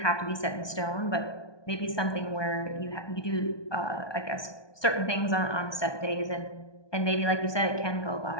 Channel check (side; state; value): right; late; 1.2 ms